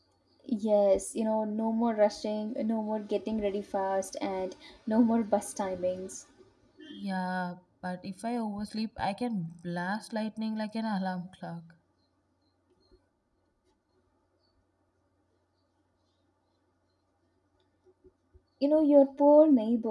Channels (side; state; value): both; identical; correlation 1.00